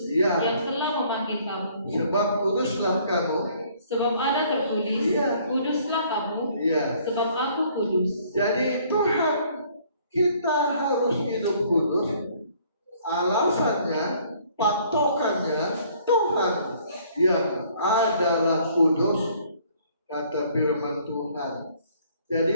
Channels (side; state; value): both; inverted; correlation -0.60